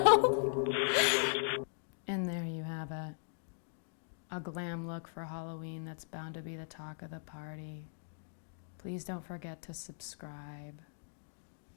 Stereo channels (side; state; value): right; silent; digital silence